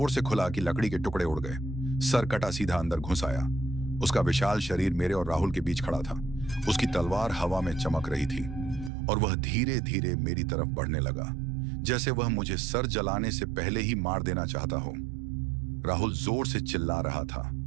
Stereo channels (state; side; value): drops out; left; at 8.9 s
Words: से खुला कि लकड़ी के टुकड़े उड़ गए। सर कटा सीधा अंदर घुस आया। उसका विशाल शरीर मेरे और राहुल के बीच खड़ा था। उसकी तलवार हवा में चमक रही थी और वह धीरे धीरे मेरी तरफ बढ़ने लगा, जैसे वह मुझे सर जलाने से पहले ही मार देना चाहता हो। राहुल जोर से चिल्ला रहा था,